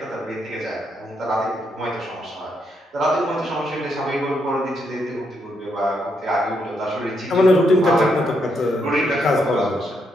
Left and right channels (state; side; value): normal; both; correlation 0.78